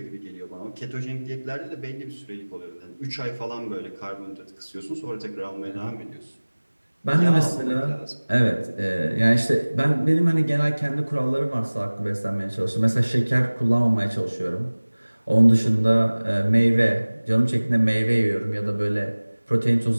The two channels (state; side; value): inverted; both; correlation -1.00